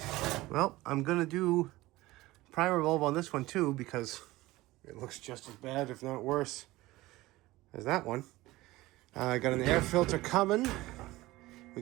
well, I'm gonna do primer bulb on this one too, because it looks just as bad, if not worse, as that one. I got an air filter coming. We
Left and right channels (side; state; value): left; quieter; 18.6 dB